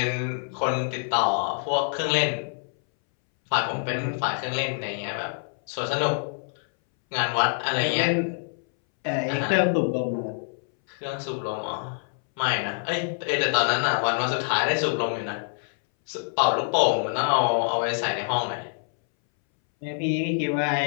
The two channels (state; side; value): silent; right; 61 dB below the other